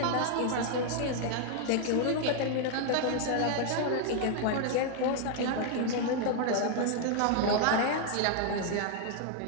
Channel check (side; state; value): both; different; correlation 0.00